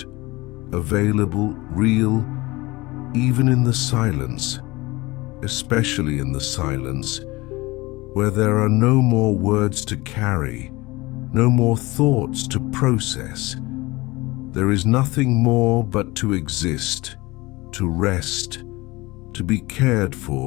available, real, even in the silence, especially in the silence, where there are no more words to carry, no more thoughts to process. There is nothing more but to exist, to rest, to be cared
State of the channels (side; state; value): right; quieter; 21.8 dB